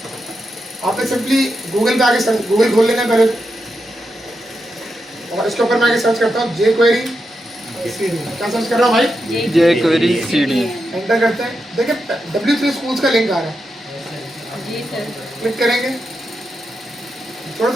आपने सिंपली गूगल पे आके गूगल खोल लेना पहले, और इसके ऊपर मैं आगे सर्च करता हूँ jQuery CD। क्या सर्च कर रहा हूँ भाई? jQuery CD। एंटर करते हैं, देखिए W3 स्कूल्स का लिंक आ रहा है। जी सर। क्लिक करेंगे, थोड़ा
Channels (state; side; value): normal; both; correlation 0.86